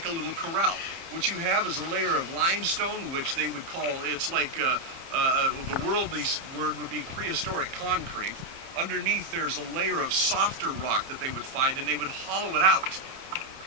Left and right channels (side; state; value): left; late; 30 ms